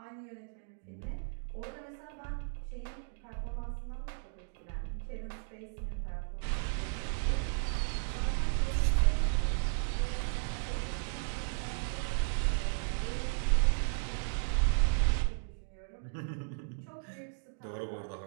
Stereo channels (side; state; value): left; silent; digital silence